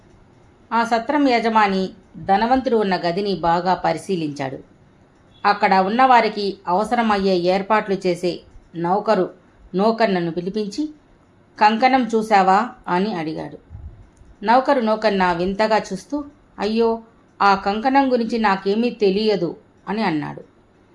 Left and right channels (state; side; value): identical; both; correlation 1.00